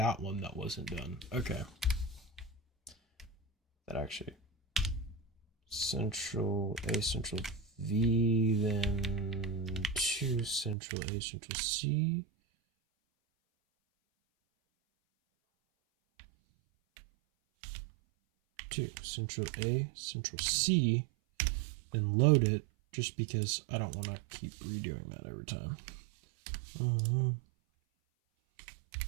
one that wasn't done. Okay. That actually. Central A, Central V, then 2 Central A, Central C. 2 Central A, Central C, then load it just because I don't want to keep redoing that every time.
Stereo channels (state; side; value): drops out; left; at 10.8 s